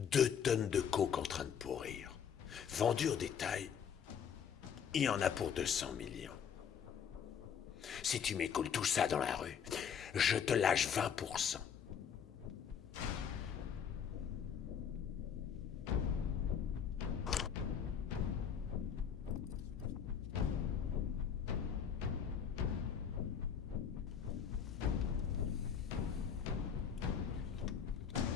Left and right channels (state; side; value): quieter; right; 7.7 dB